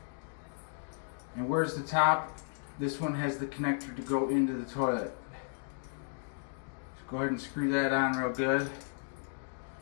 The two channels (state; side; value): silent; right; digital silence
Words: And where's the top? This one has the connector to go into the toilet. So go ahead and screw that on real good.